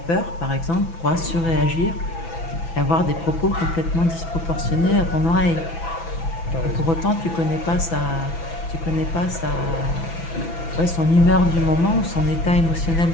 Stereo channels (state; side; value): late; right; 6.0 ms